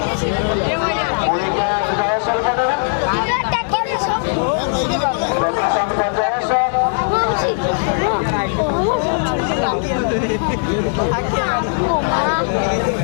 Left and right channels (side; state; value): right; silent; digital silence